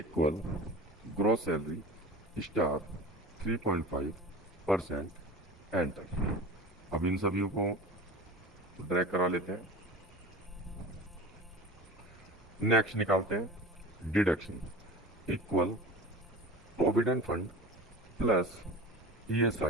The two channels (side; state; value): both; normal; correlation 0.35